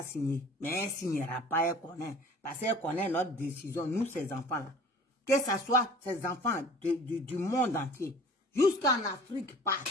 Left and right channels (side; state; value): both; normal; correlation 0.46